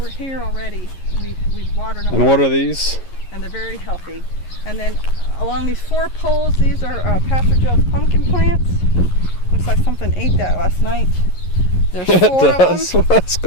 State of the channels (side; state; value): right; late; 11 ms